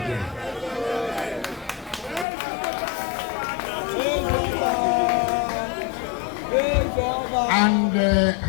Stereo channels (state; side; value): drops out; right; at 2.2 s